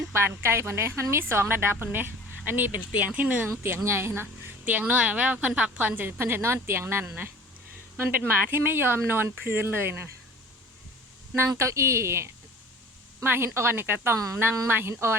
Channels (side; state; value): both; normal; correlation 0.45